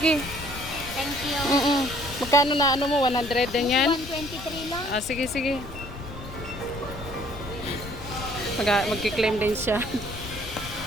Thank you. Magkano na mo, 100 din yan? 123 lang. Ah, sige, sige. Magki-claim din siya.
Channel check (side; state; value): left; noise; rumble, 12 dB below the sound